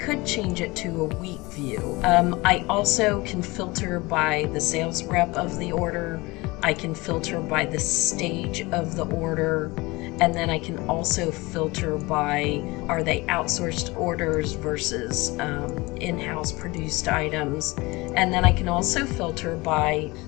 change it to a week view. I also can filter by the sales rep of the order. I can filter by the stage of the order. And then I can also filter by, are they outsourced orders versus in-house produced items. And then I can also filter by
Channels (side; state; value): right; quieter; 23.0 dB